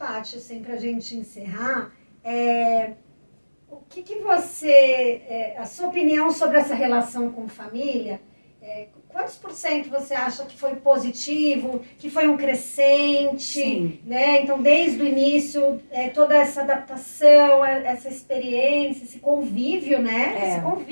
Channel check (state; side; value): inverted; both; correlation -1.00